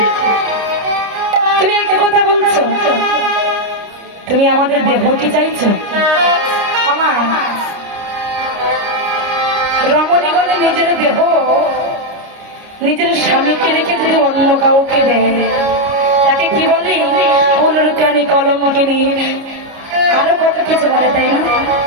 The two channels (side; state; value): left; late; 29 ms